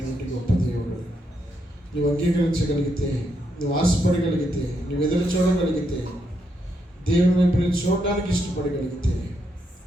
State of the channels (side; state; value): both; normal; correlation 0.79